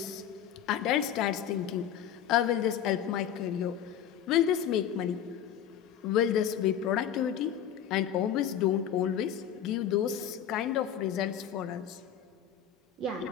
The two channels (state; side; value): quieter; right; 9.4 dB